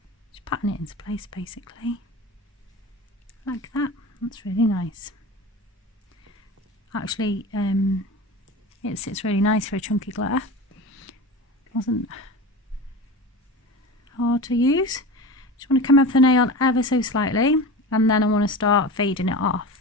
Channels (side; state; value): both; normal; correlation 0.30